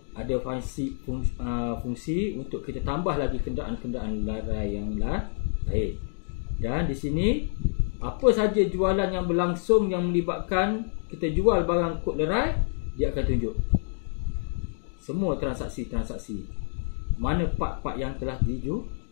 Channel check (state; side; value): silent; right; digital silence